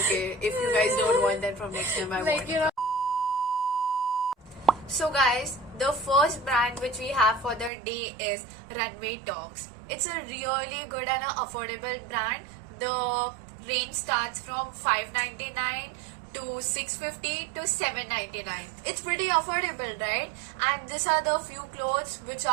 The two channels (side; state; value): left; drops out; at 7.7 s